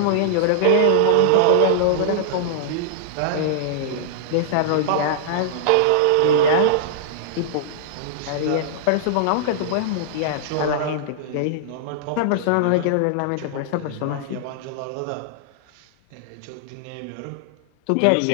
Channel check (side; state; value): both; different; correlation -0.01